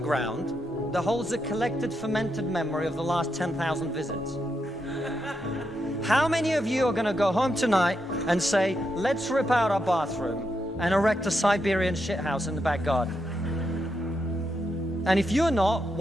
that holds a collected fermented memory of the last 10,000 visits. How many of you are going to go home tonight and say, let's rip out our bathroom and erect a Siberian shithouse in the back garden? And if you're not,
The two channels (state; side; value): normal; both; correlation 0.83